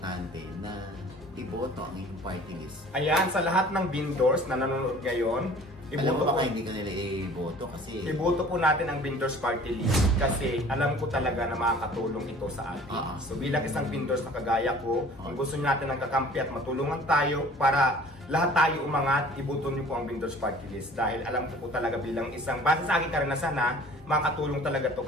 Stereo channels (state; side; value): normal; both; correlation 0.48